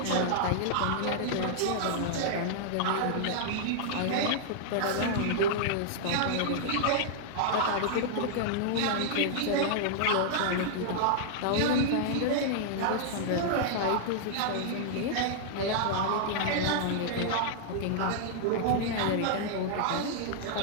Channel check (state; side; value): different; both; correlation -0.01